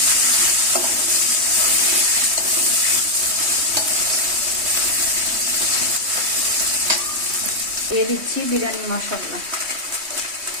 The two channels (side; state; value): left; late; 3.2 ms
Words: দিয়ে দিচ্ছি বিরিয়ানি মশলা।